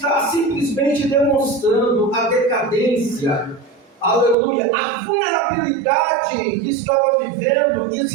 simplesmente demonstrando a decadência, aleluia, a vulnerabilidade que estava vivendo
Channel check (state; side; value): drops out; left; at 4.4 s